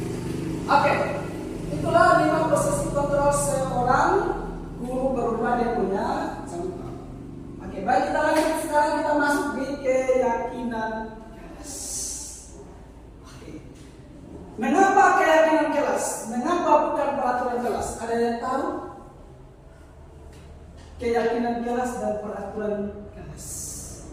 Oke, itulah 5 posisi kontrol seorang guru berupa dia punya contoh. Oke, baik, kita lanjut. Sekarang kita masuk di keyakinan kelas. Oke. Mengapa keyakinan kelas? Mengapa bukan peraturan kelas? Ada yang tahu? Keyakinan kelas dan peraturan kelas.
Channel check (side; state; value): both; identical; correlation 1.00